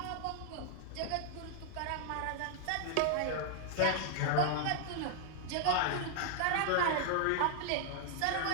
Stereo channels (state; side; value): different; both; correlation 0.00